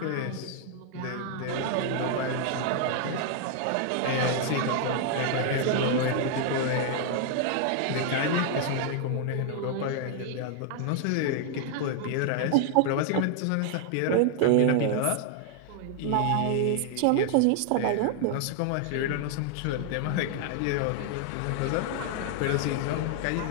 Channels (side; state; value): both; different; correlation 0.00